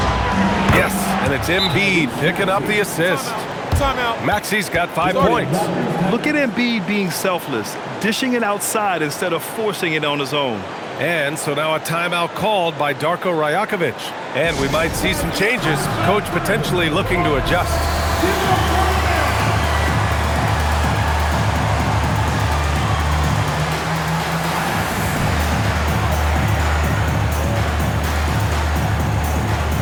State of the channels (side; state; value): both; identical; correlation 1.00